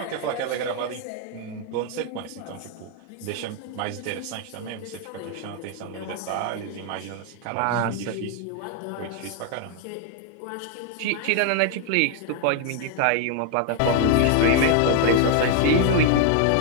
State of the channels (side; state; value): both; different; correlation 0.00